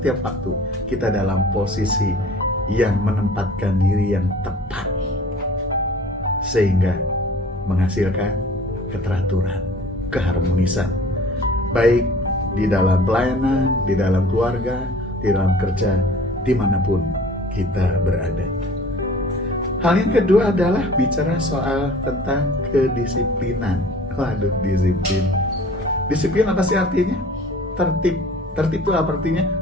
waktu, kita dalam posisi yang menempatkan diri yang tepat, sehingga menghasilkan keteraturan, keharmonisan, baik di dalam pelayanan, di dalam keluarga, di dalam kerja, dimanapun kita berada. Hal yang kedua adalah bicara soal tentang kedisiplinan. Waduh, disiplin. Disiplin apa sih artinya? Tertib. Tertib itu apa artinya?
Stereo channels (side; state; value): both; normal; correlation 0.47